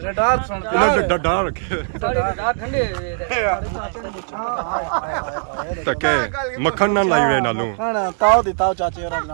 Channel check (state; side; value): silent; left; digital silence